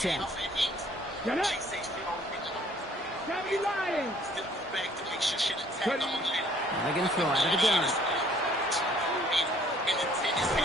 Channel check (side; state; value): both; normal; correlation 0.59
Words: Get up. Lying. They're going to throw out of the gun.